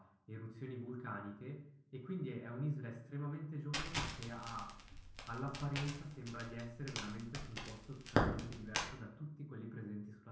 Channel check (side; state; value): both; identical; correlation 1.00